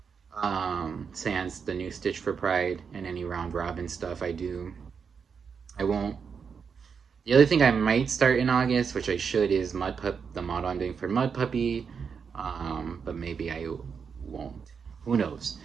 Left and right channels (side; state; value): left; quieter; 6.2 dB